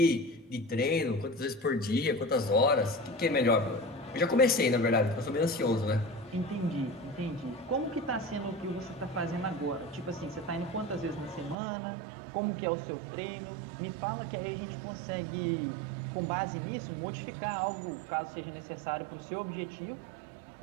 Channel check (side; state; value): left; drops out; at 11.6 s